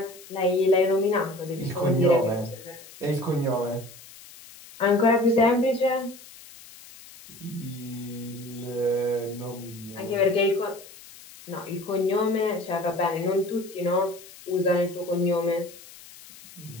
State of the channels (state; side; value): noise; left; hiss, 19 dB below the sound